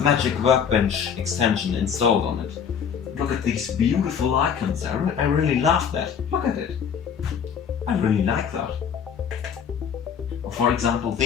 Magic Workbench extension installed on it. Look at these beautiful icons, I really love that. Look at it. I really like that. For example,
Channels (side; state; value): right; quieter; 7.4 dB